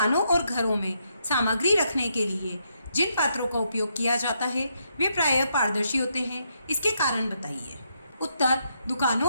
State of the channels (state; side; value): inverted; both; correlation -0.78